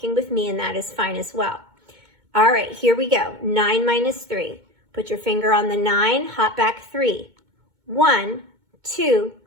with me and that is fine as well. All right, here we go. 9 minus 3. Put your finger on the 9, hop back 3. 1, 2,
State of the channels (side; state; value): left; late; 2.2 ms